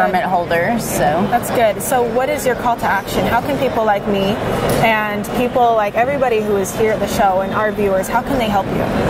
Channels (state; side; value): identical; both; correlation 1.00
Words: holders. So that's good. So what is your call to action? How can people like me and people like everybody who is here at the show and our viewers, how can they help you?